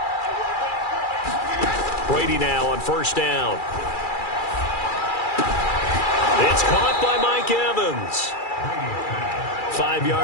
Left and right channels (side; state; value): right; late; 2.4 ms